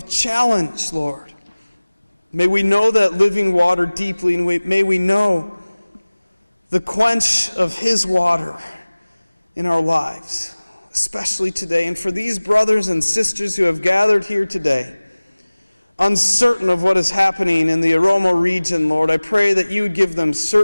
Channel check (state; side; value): inverted; both; correlation -1.00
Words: challenge, Lord, may we know that living water deeply, and may we know the quench of His water in our lives, especially today. And for these brothers and sisters who have gathered here today, uncertain of what is happening in the Oromo region, Lord, I pray that you would give them